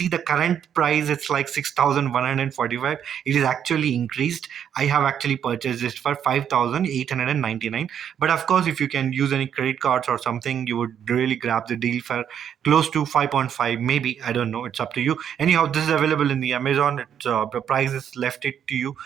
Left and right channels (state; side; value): quieter; left; 8.9 dB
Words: the current price. It's like 6,145. It is actually increased. I have actually purchased this for 5,899. But of course, if you can use any credit cards or something, you would really grab the deal for close to 5.5, maybe. I don't know. It's up to you. Anyhow, this is available in the Amazon. The price is left it to you.